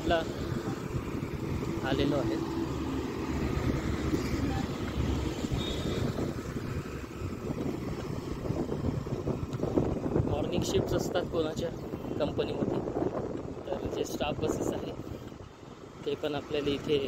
आलेलो आहे. मॉर्निंग शिफ्ट्स असतात कोणाच्या कंपनीमध्ये, तर जे स्टाफ बसेस आहे ते पण आपल्याला इथे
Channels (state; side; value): identical; both; correlation 1.00